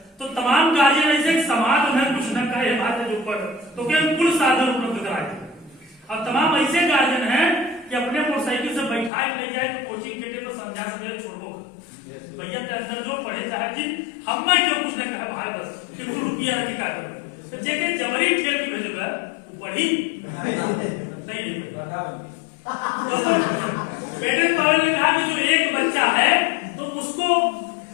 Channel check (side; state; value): right; drops out; at 9.1 s